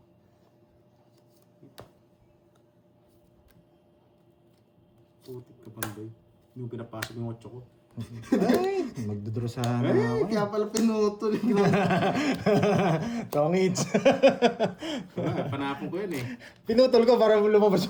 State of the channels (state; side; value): identical; both; correlation 1.00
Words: Putik ka panday. Hindi mo pinapasok yung 8 ko. Ay! Magdodro sana Ay, ako. kaya pala pinutol. Tongits. Panapon ko yun eh. Pinutol ko para lumabas